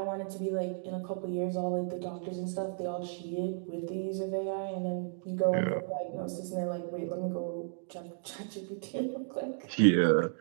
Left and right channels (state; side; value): silent; left; digital silence